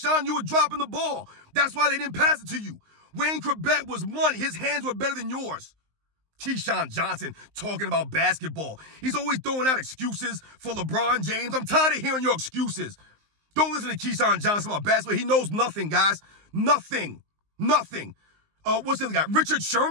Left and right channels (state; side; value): late; left; 19 ms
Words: you were dropping the ball. That's why they didn't pass it to you. Wayne Corbett was money. His hands were better than yours. Keyshawn Johnson talking about basketball. He's always throwing out excuses for LeBron James. I'm tired of hearing your excuses. Don't listen to Keyshawn Johnson about basketball. He knows nothing, guys. Nothing. Nothing. What's the other guy? Richard